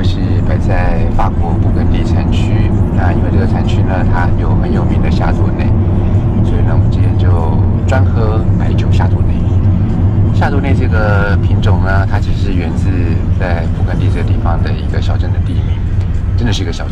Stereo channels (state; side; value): identical; both; correlation 1.00